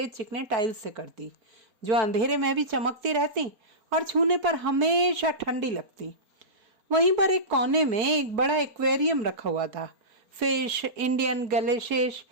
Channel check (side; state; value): left; late; 4.3 ms